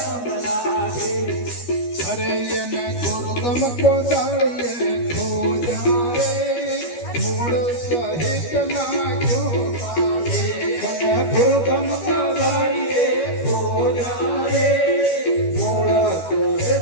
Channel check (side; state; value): right; late; 12 ms